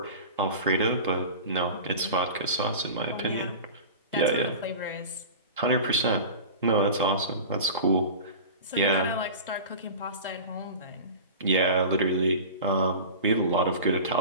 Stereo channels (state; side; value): inverted; both; correlation -0.34